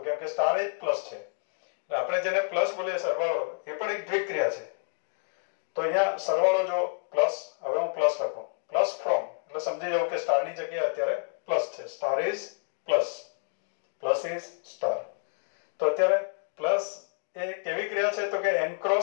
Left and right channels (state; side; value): silent; right; 58 dB below the other